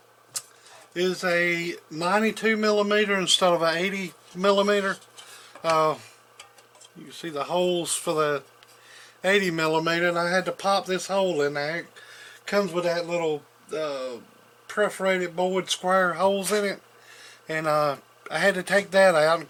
is a 92 millimeter instead of an 80 millimeter. You can see the holes for the 80 millimeter, and I had to pop this hole in there. It comes with that little perforated board square holes in it, and I had to take that out. And of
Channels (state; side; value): identical; both; correlation 1.00